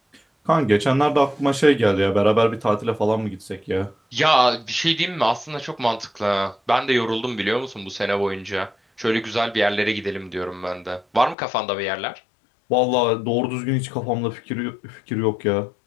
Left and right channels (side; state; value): right; drops out; at 11.4 s